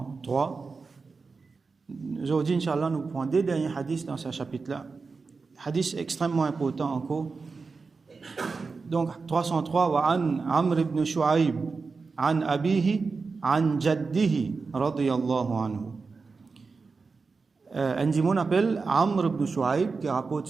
Aujourd'hui, Inch'Allah, nous prenons deux derniers hadiths dans ce chapitre-là. Hadith extrêmement important encore. Donc, 303, وعن عمرو بن شعيب عن أبيه عن جده رضي الله عنه. Un dimon appelle Amr ibn Shu'aib qui rapporte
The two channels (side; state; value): left; quieter; 4.5 dB